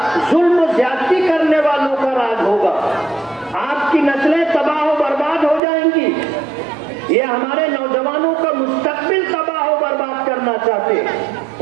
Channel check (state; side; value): drops out; left; at 5.6 s